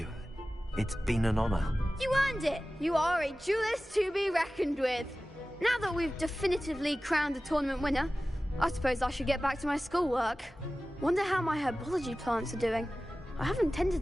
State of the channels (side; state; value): both; normal; correlation 0.96